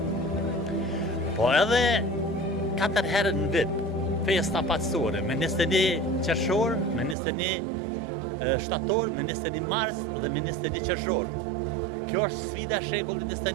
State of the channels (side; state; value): left; drops out; at 7.2 s